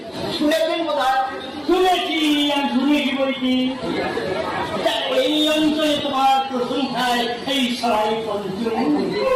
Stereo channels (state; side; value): identical; both; correlation 1.00